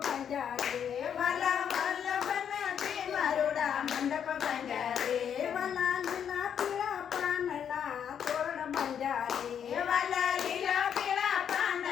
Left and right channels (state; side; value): quieter; right; 8.4 dB